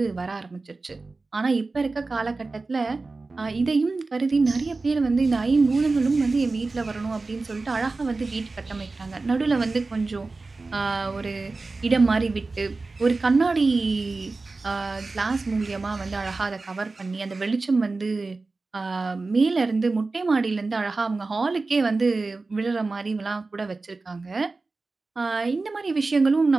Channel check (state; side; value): quieter; left; 3.6 dB